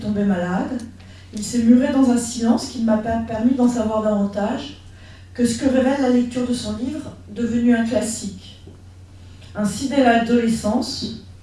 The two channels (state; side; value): identical; both; correlation 1.00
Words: tombé malade. Il s'est muré dans un silence qui ne m'a pas permis d'en savoir davantage que ce que révèle la lecture de son livre, devenu un classique. Ainsi, dès l'adolescence,